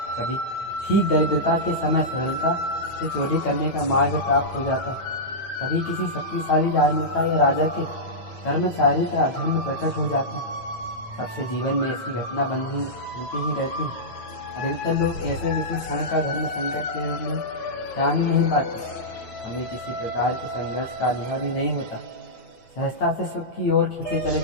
कभी ठीक दरिद्रता के समय सरलता से चोरी करने का मार्ग प्राप्त हो जाता है, कभी किसी शक्तिशाली राजनेता या राजा के कर्मचारी का अधर्म प्रकट हो जाता है। सबसे जीवन में ऐसी घटना बनती ही रहती है। अधिकतर लोग ऐसे किसी क्षण का धर्म संकट के रूप में जान ही नहीं पाते। हमें किसी प्रकार के संघर्ष का अनुभव ही नहीं होता, सहजता से सुख की ओर खींचे चले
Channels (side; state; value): right; late; 9.0 ms